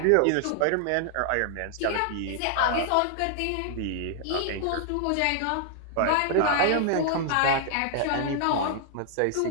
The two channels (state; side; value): different; both; correlation -0.01